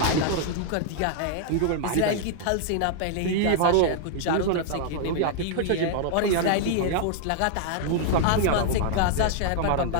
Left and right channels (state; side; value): different; both; correlation 0.00